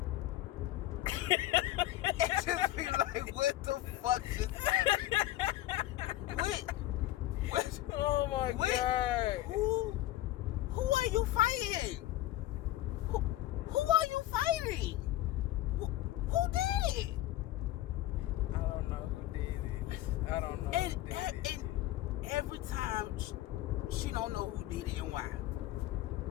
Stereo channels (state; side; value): quieter; right; 15.1 dB